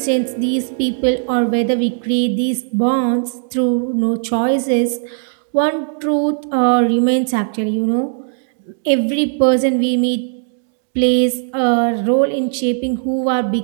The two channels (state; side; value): silent; left; digital silence